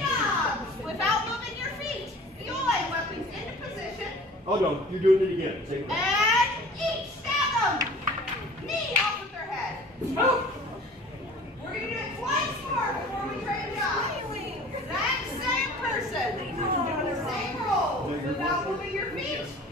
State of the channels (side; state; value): both; normal; correlation 0.45